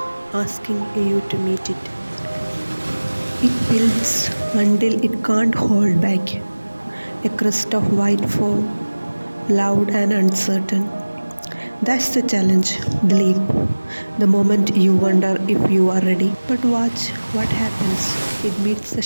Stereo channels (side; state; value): both; inverted; correlation -1.00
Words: asking you to meet it. It builds until it can't hold back. A crust of white foam, loud and uncertain. That's the challenge, the leap, the moment you wonder if you are ready. But watch what happens. It meets the